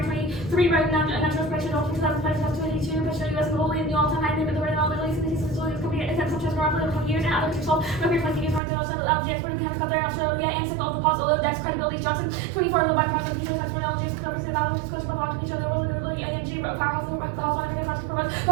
23 right now national expression of 2005 to 2022 push the US globally in the all-time high limit the rate of Middle East and these facilities company attempts such as around 20 years and other countries solve record 20 years around the LNG export in Canada Qatar Australia and signal of the pause although index credibility Johnson 24 low by points of people that's for LNG is covering the value of coach for blocking each other world and really LNG powerhouse over the house one of the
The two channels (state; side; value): drops out; left; at 8.6 s